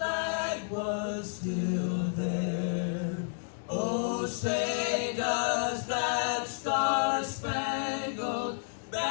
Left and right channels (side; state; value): right; silent; digital silence